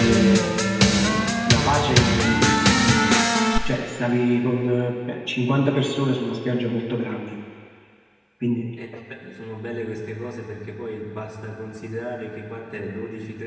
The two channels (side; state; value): both; identical; correlation 1.00